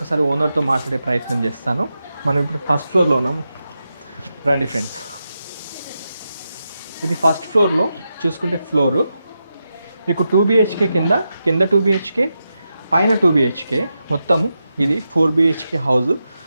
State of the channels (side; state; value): both; inverted; correlation -0.88